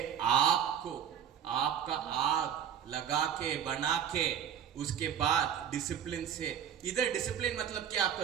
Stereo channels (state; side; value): quieter; left; 8.8 dB